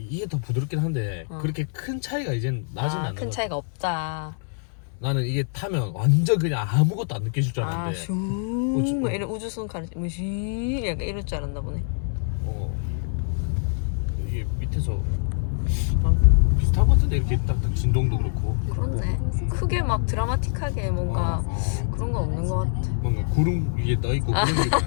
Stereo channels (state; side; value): silent; right; digital silence